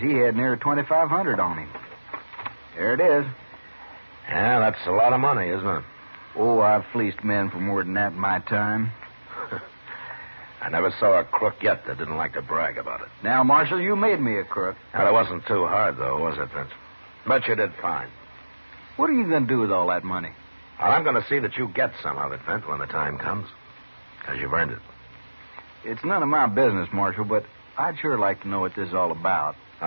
had near 2,500 on him. There it is. Yeah, that's a lot of money, isn't it? Oh, I've fleeced men for more than that in my time. I never saw a crook yet that didn't like to brag about it. Now, Marshal, you made me a crook. Well, it wasn't too hard, though, was it, Vince? But you did fine. What are you going to do with all that money? Well, I'm going to see that you get some of it, Vince, when the time comes. Because you've earned it. It's none of my business, Marshal, but I'd sure like to know what this is all about.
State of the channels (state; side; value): inverted; both; correlation -1.00